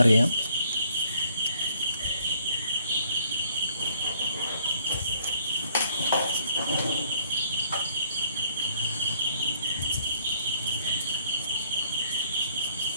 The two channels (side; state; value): both; inverted; correlation -0.63